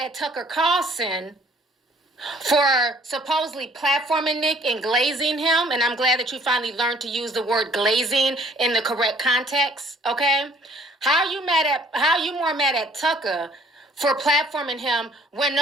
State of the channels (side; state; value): both; normal; correlation 0.58